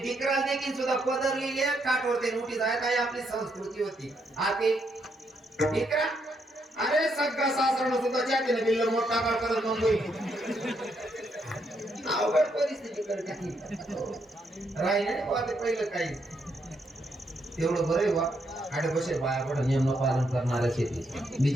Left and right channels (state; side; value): normal; both; correlation 0.77